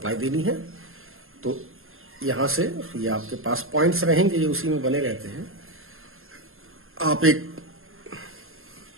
देनी है, तो यहां से ये आपके पास पॉइंट्स रहेंगे, ये उसी में बने रहते हैं। आप एक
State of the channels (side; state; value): left; late; 0.61 ms